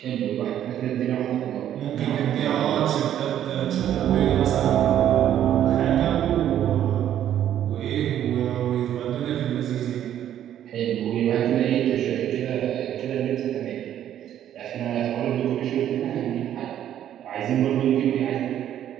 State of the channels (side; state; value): left; quieter; 10.9 dB